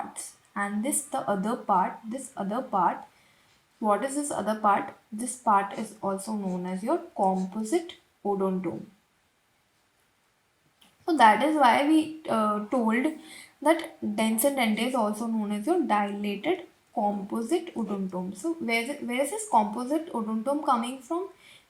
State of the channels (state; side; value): identical; both; correlation 1.00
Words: And this other part, what is this other part? This part is also known as your composite odontome. So that is why we told that dens and dente is also known as your dilated composite odontome. So where is this composite odontome coming from?